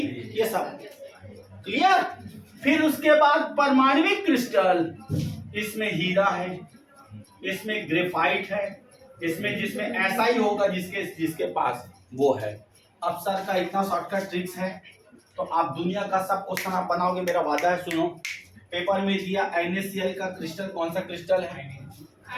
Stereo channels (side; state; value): both; identical; correlation 1.00